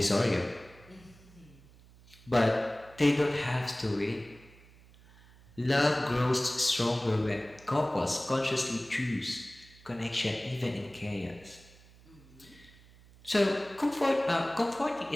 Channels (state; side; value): noise; right; hum, 24 dB below the sound